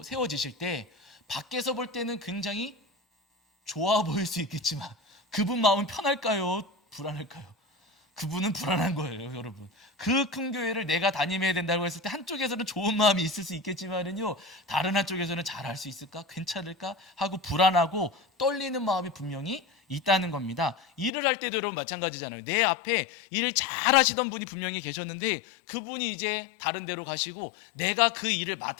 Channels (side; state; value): right; drops out; at 21.1 s